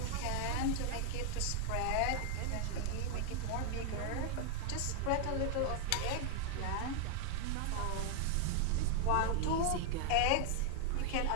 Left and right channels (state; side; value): different; both; correlation 0.00